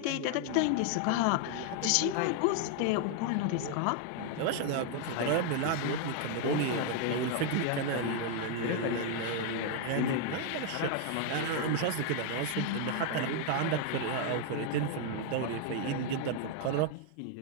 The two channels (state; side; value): different; both; correlation 0.00